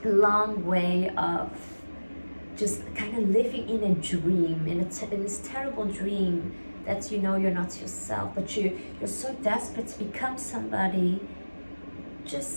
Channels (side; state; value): both; inverted; correlation -1.00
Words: long way of just kind of living in a dream, in this terrible dream that you know you're not yourself, but you're so desperate to become somebody